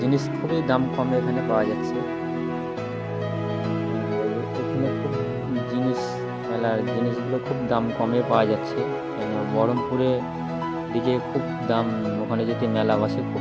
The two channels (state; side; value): identical; both; correlation 1.00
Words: খুবই দাম কমে এখানে পাওয়া যাচ্ছে। এখানে খুব মেলার জিনিসগুলো খুব দাম কমে পাওয়া যাচ্ছে, কেন বহরমপুরে ডিজে খুব দাম, ওখানে যদি মেলা বসে